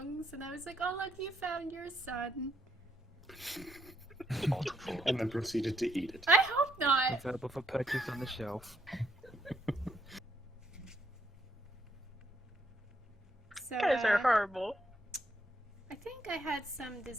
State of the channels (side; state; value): both; normal; correlation 0.73